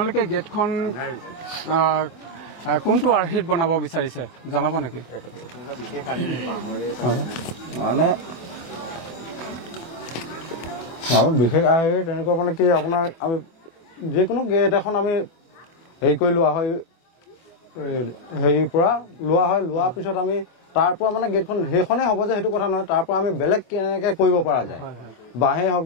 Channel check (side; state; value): right; late; 24 ms